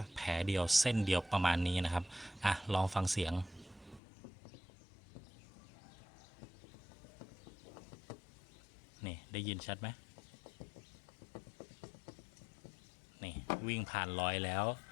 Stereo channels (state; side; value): drops out; right; at 4.0 s